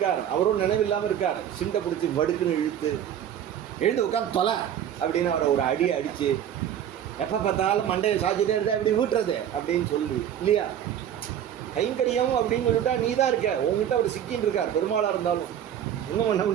அவரும் நினைவில்லாமல் இருக்கார். சிண்டை பிடிச்சி வடுக்குன்னு எழுந்து உட்காந்து தொலை அப்படின்னு அவரை ஒரு அடி அடித்து, எப்போ பார்த்தாலும் மண்டையை சாய்ச்சிட்டே இருந்தா எப்படி வீட்டுறது அப்படின்னு சொல்லி இல்லையா. கைங்கரியம் அப்படின்னு சொல்லிட்டா நீ தான் இருக்க, உங்ககிட்ட அவர் சிக்கின்னு இருக்கார். பெருமாளாக இருந்தாலும் ஒன்றும் பண்ண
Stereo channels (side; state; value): left; quieter; 10.0 dB